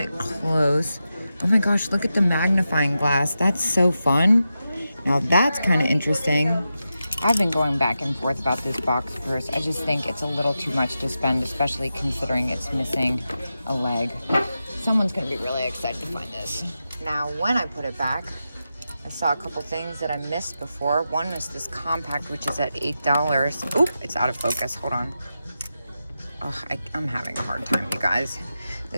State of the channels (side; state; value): both; inverted; correlation -0.90